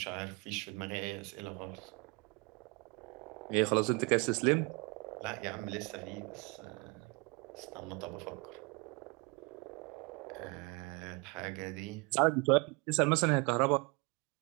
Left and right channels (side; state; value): left; quieter; 29.2 dB